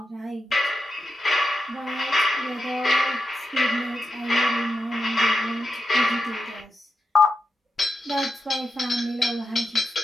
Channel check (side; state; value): both; normal; correlation 0.87